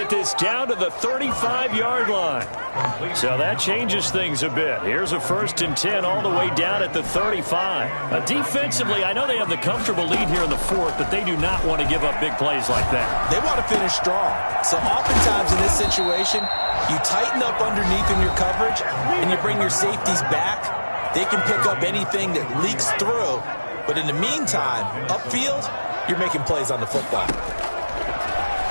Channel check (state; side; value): inverted; both; correlation -1.00